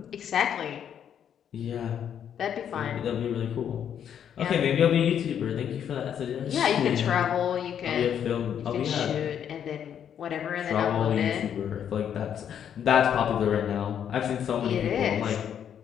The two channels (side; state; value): right; quieter; 8.9 dB